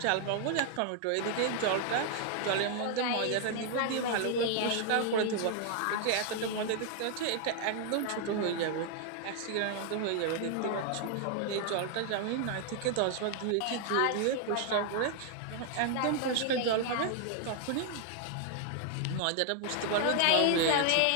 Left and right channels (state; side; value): different; both; correlation 0.00